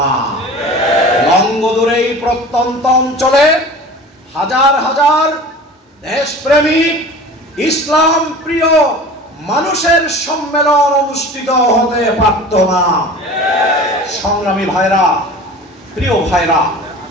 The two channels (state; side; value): normal; both; correlation 0.39